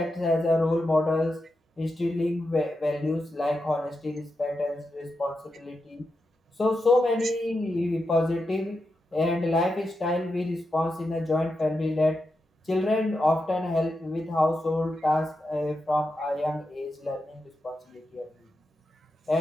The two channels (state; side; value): normal; both; correlation 0.88